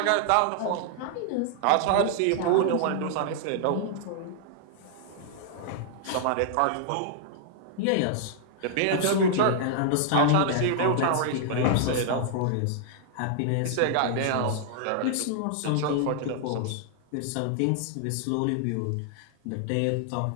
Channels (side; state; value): both; different; correlation -0.01